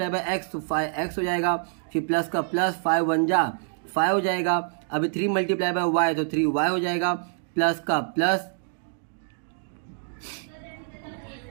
x तो 5x हो जाएगा, फिर प्लस का प्लस, 5 1 जा 5 हो जाएगा। अभी 3 × y तो 3y हो जाएगा, प्लस का प्लस,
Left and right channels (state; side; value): silent; left; digital silence